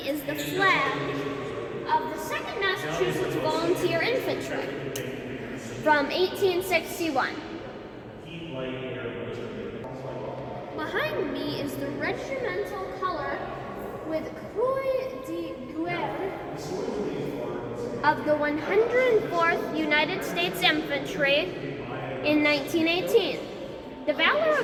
is the flag of the 2nd Massachusetts Volunteer Infantry from 1861. Behind me is the regimental color with Croix de Guerre of the 104th United States Infantry in 1918. The valor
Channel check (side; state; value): both; identical; correlation 1.00